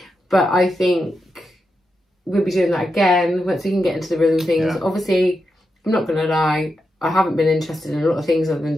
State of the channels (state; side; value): normal; both; correlation 0.87